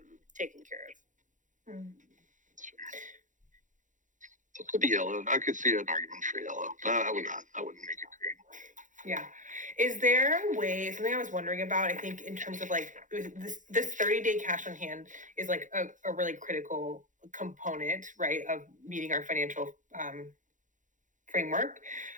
taken care of? So it could be yellow. I could see an argument for yellow, but I wouldn't make it green. Yeah. Is there a way, something I was wondering about, I think in terms of like this 30-day cash on hand is like a really critical component, right, of meeting our financial framework.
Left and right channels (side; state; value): left; late; 0.37 ms